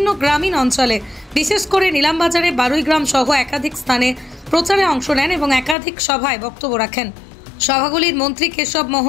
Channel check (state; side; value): drops out; right; at 5.8 s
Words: গ্রামীণ অঞ্চলে, বিশেষ করে নীলামবাজারে 12 গ্রাম সহ একাধিক স্থানে প্রচারে অংশ নেন এবং একাধিক সভায় বক্তব্য রাখেন। সভাগুলির মন্ত্রী কেশব